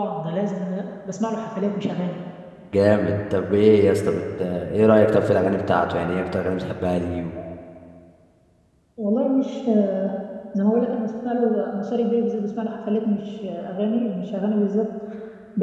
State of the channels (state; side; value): identical; both; correlation 1.00